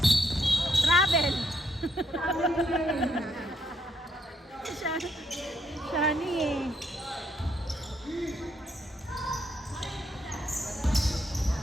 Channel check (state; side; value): normal; both; correlation 0.74